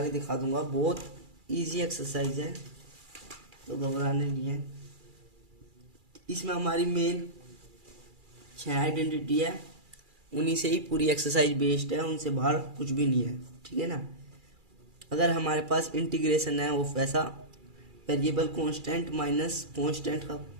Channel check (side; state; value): left; late; 2.4 ms